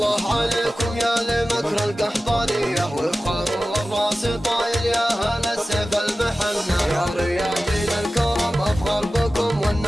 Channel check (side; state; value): both; normal; correlation 0.95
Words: عليكم يا لمكر القحطانية، وفخر والراس طايل يا هلا السيف المحنى. يا رياجل الكرم افخر بكم